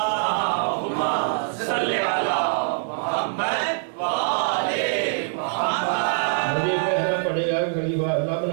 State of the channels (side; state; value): left; silent; 63 dB below the other